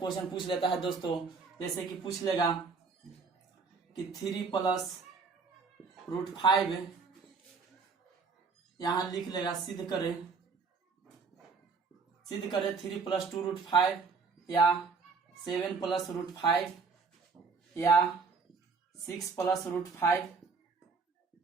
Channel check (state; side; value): quieter; left; 4.9 dB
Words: पूछ लेता है दोस्तों, जैसे कि पूछ लेगा कि 3 + √5 यहाँ लिख लेगा सिद्ध करे 3 + 2 √5 या 7 + √5 या 6 + √5